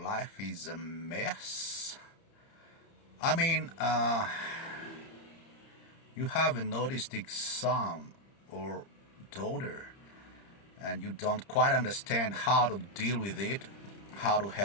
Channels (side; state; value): right; late; 30 ms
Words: life is a mess? I mean, you have an autistic son or daughter, and you don't quite understand how to deal with it, how to